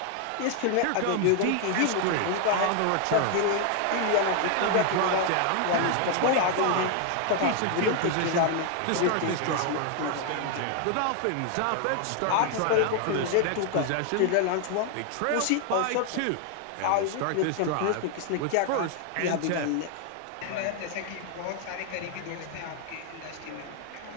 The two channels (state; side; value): different; both; correlation 0.00